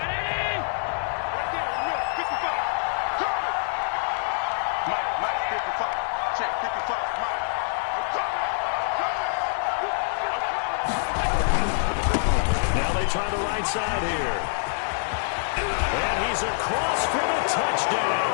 Now they try the right side here. And he's across for the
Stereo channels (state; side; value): silent; right; digital silence